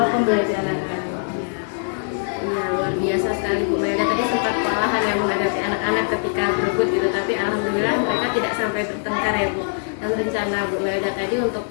pembelajaran. Iya, luar biasa sekali Bu Melda. Tadi sempat kewalahan ya menghadapi anak-anak ketika berebut gitu, tapi alhamdulillah mereka tidak sampai bertengkar ya Bu. Dan rencana Bu Melda tadi untuk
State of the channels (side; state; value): right; silent; 62 dB below the other